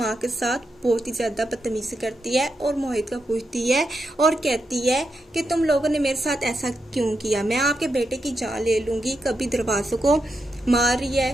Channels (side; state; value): both; normal; correlation 0.85